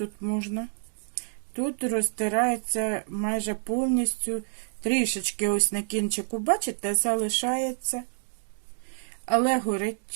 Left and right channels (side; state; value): left; silent; digital silence